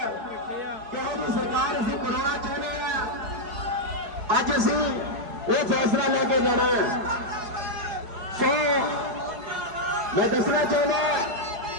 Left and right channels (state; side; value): late; left; 4.8 ms